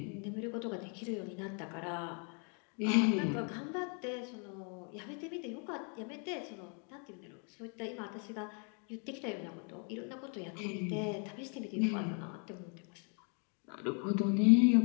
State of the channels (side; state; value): right; quieter; 38.7 dB